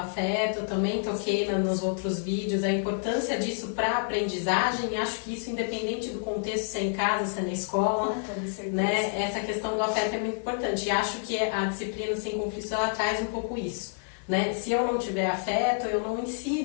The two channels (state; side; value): silent; right; digital silence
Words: eu também toquei nos outros vídeos, a importância disso para a aprendizagem, acho que isso independente do contexto, se é em casa, se é na escola, né? Essa questão do afeto é muito importante e acho que a disciplina sem conflito ela traz um pouco isso, né? Se eu não tiver afeto, eu não